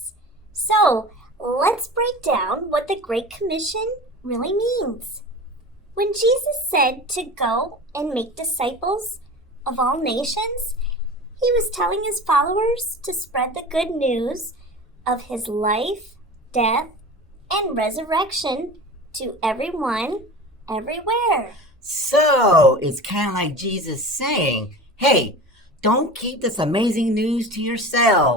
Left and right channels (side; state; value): both; normal; correlation 0.34